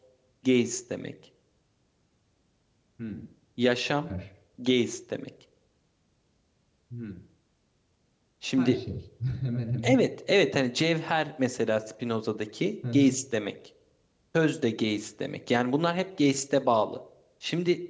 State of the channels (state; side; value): identical; both; correlation 1.00